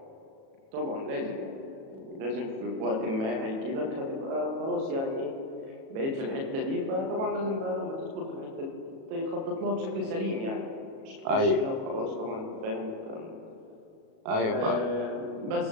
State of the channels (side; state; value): left; late; 37 ms